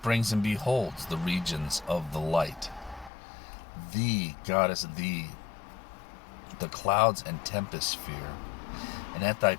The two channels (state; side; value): drops out; right; at 3.1 s